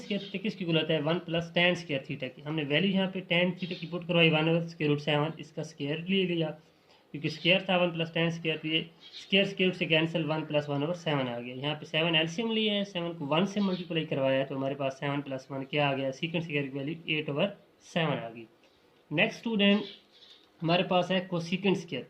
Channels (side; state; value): both; identical; correlation 1.00